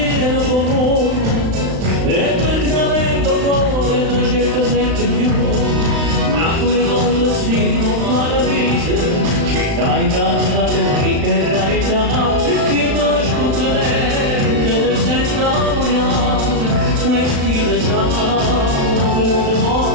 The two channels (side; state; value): left; late; 35 ms